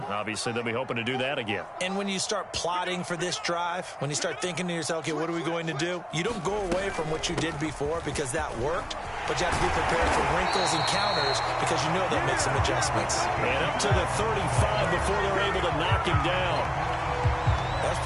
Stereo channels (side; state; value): both; identical; correlation 1.00